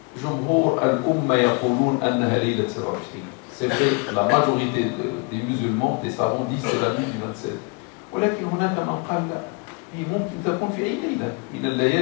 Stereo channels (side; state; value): right; quieter; 30.9 dB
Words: جمهور الأمة يقولون أنها ليلة 27. C'est vrai, la majorité des musulmans, des savants disent que c'est la nuit du 27. ولكن هناك من قال لا. هي ممكن تكون في أي ليلة من